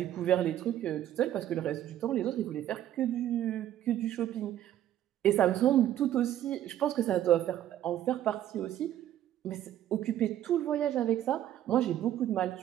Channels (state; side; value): quieter; left; 12.0 dB